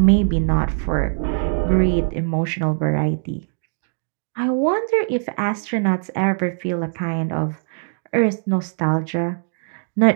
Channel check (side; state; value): left; silent; digital silence